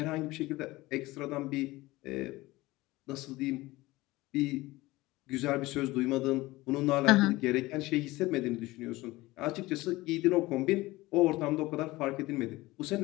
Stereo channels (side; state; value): right; quieter; 19.5 dB